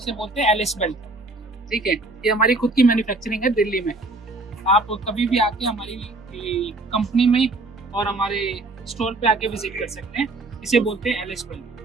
बोलते हैं एलिस बेल्ट। ठीक है, ये हमारी खुद की मैन्युफैक्चरिंग है दिल्ली में। आप कभी भी आके हमारी कंपनी में और हमारे स्टोर पे आके विजिट कर सकते हैं। इसे बोलते हैं एलिस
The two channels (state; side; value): quieter; left; 3.0 dB